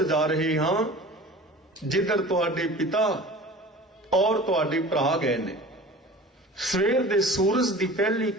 ਜਾ ਰਹੇ ਹਾਂ ਜਿੱਧਰ ਤੁਹਾਡੇ ਪਿਤਾ ਔਰ ਤੁਹਾਡੇ ਭਰਾ ਗਏ ਨੇ। ਸਵੇਰ ਦੇ ਸੂਰਜ ਦੀ ਪਹਿਲੀ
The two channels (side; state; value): both; normal; correlation 0.40